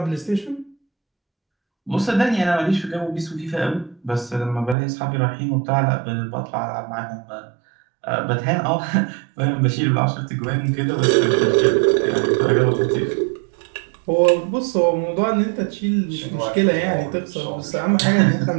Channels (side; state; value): left; drops out; at 4.8 s